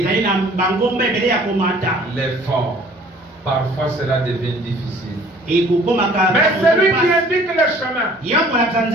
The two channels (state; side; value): normal; both; correlation 0.53